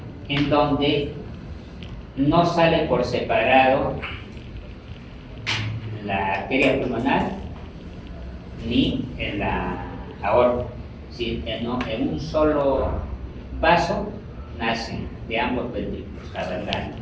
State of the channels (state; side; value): identical; both; correlation 1.00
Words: En donde no sale por separado la arteria pulmonar ni en la aorta. Si en un solo vaso nacen de ambos ventrículos, cavernario.